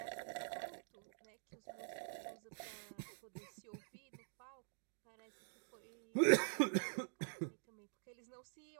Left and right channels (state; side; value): silent; left; digital silence